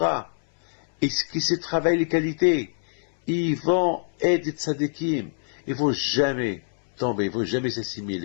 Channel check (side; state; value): right; silent; 60 dB below the other